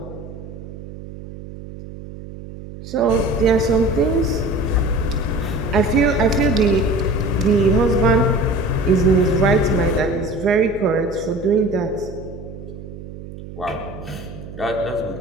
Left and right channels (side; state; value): right; noise; hum, 13 dB below the sound